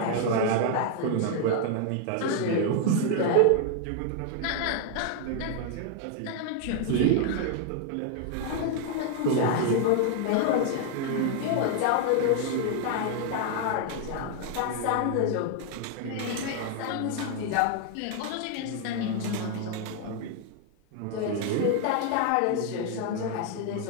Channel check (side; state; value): both; different; correlation 0.00